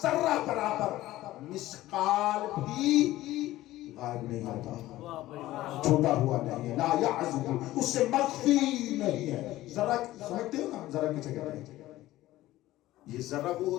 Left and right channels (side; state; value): right; quieter; 16.0 dB